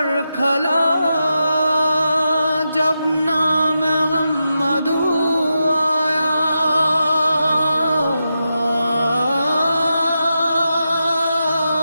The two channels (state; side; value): inverted; both; correlation -0.88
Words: کھلا جب نام محمد آیا،